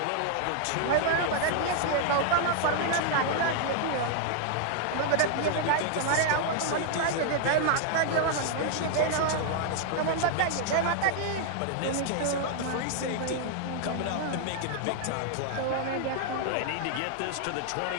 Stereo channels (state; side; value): different; both; correlation -0.01